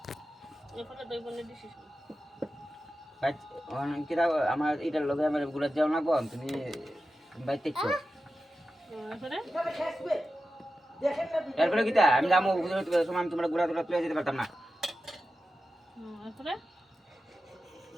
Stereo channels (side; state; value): both; normal; correlation 0.92